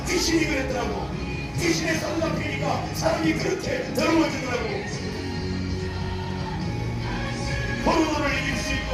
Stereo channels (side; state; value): both; identical; correlation 1.00